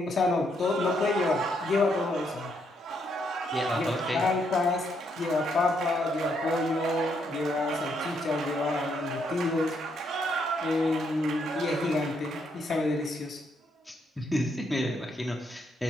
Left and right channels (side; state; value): both; normal; correlation 0.75